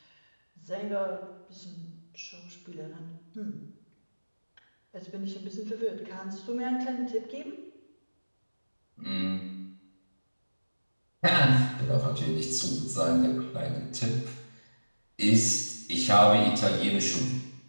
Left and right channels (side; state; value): both; inverted; correlation -1.00